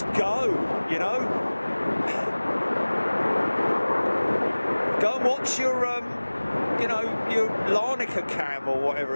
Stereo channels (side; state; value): both; inverted; correlation -1.00